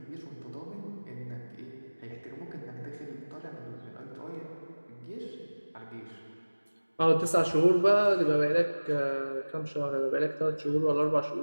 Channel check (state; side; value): inverted; both; correlation -1.00